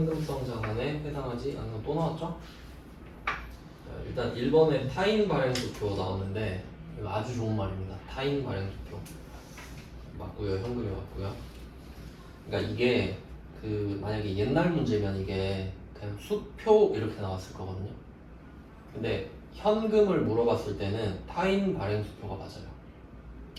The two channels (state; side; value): identical; both; correlation 1.00